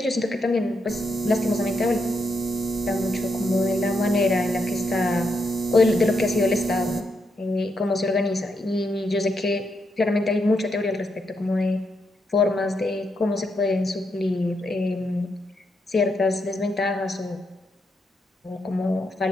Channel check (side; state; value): both; normal; correlation 0.81